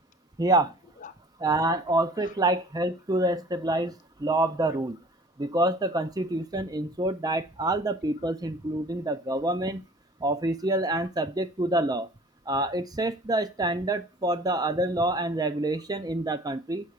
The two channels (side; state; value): both; normal; correlation 0.49